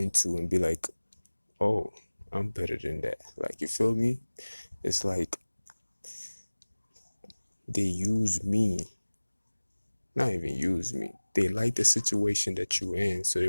to and be like, oh, I'm better than that. Like, you feel me? It's like they use me, not even use me. They like the situation that you're in, so they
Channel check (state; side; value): inverted; both; correlation -1.00